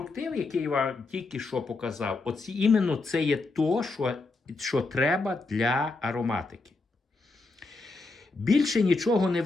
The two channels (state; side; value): quieter; right; 3.5 dB